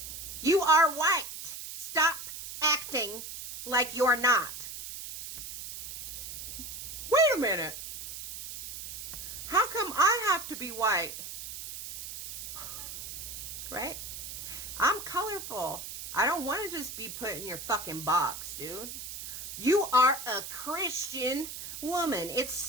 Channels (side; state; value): right; noise; hiss, 9 dB below the sound